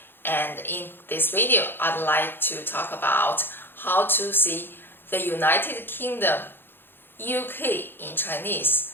And in this video, I'd like to talk about how to see the United Kingdom, UK in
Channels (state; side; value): late; right; 0.10 ms